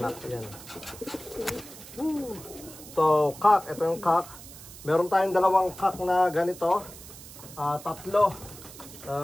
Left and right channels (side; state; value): right; noise; hiss, 16 dB below the sound